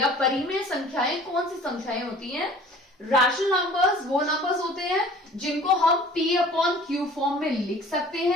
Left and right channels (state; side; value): normal; both; correlation 0.48